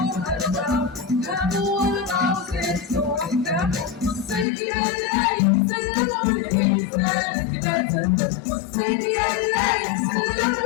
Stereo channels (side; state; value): right; drops out; at 4.5 s